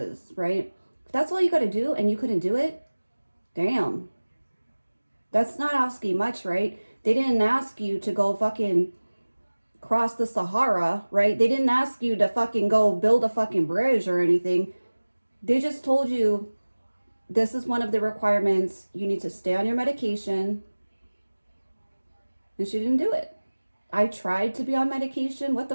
right? If that's all you gotta do and you couldn't do it, damn. That's not asking much, right? They didn't ask you to go fucking cross the Sahara, right? They didn't ask you to fucking go build a fucking bridge or anything. They just told you this is one of the requirements. You need to stay on your medication. And she didn't do it. I tried to be on medication. What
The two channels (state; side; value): inverted; both; correlation -1.00